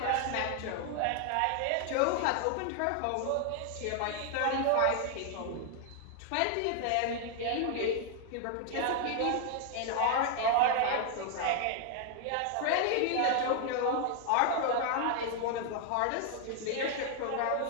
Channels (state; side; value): different; both; correlation 0.00